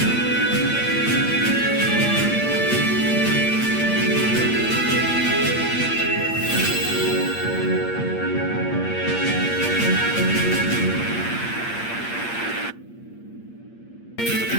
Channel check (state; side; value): late; right; 8.6 ms